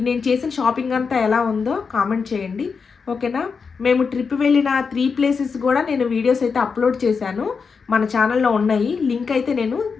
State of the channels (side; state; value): right; quieter; 5.4 dB